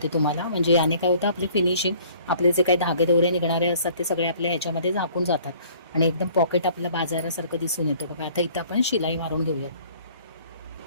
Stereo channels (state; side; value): inverted; both; correlation -0.55